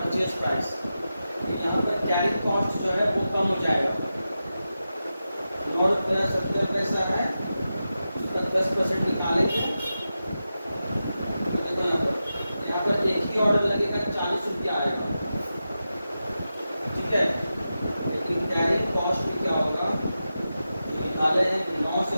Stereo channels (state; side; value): inverted; both; correlation -0.91